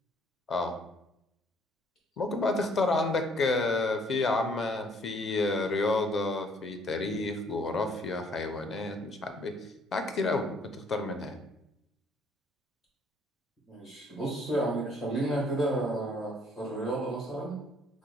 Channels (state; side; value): normal; both; correlation 0.62